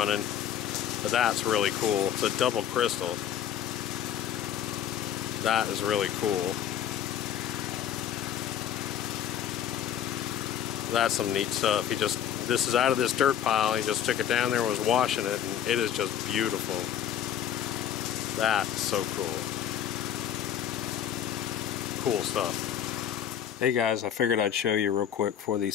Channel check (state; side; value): quieter; right; 9.7 dB